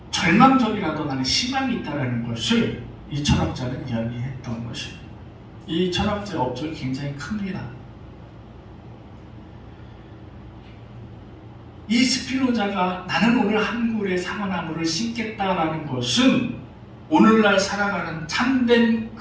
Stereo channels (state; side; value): identical; both; correlation 1.00